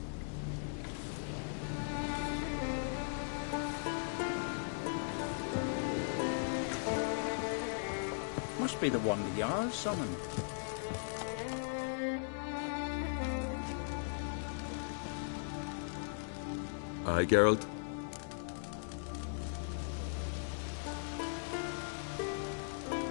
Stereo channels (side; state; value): right; silent; digital silence